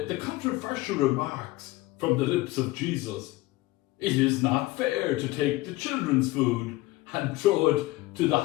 controversial remarks from the lips of Jesus. It is not fair to take the children's food and throw it to the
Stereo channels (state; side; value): quieter; right; 18.9 dB